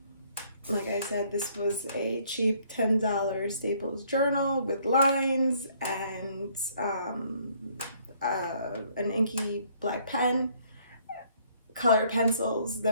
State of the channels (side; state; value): both; inverted; correlation -0.64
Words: Like I said, this was a cheap $10 Staples journal with lines and an inky black pen, color pencils.